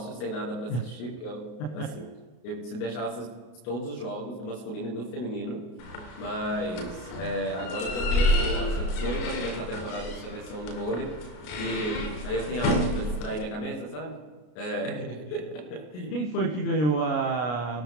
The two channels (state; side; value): late; right; 33 ms